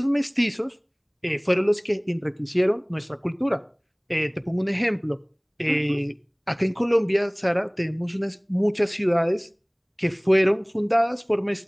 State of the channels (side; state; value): both; identical; correlation 1.00